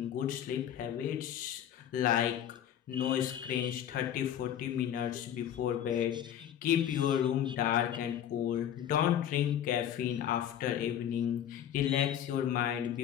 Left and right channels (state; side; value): quieter; right; 10.2 dB